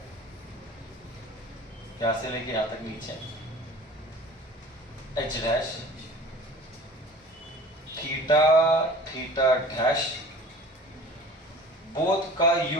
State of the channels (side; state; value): both; normal; correlation 0.43